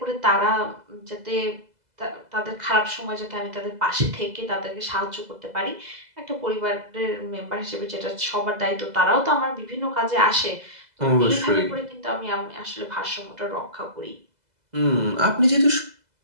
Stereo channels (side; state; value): left; late; 2.0 ms